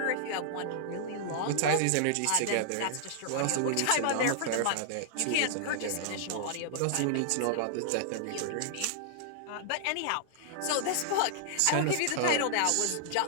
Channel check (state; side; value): different; both; correlation -0.01